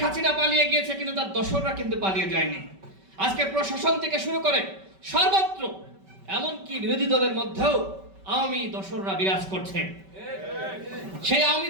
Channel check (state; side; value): late; left; 5.2 ms